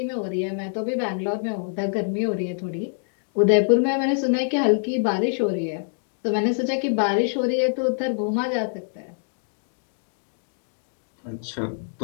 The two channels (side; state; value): right; silent; digital silence